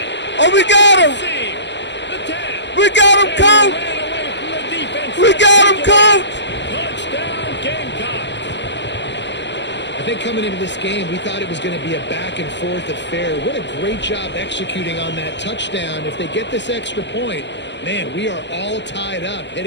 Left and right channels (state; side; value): late; right; 0.52 ms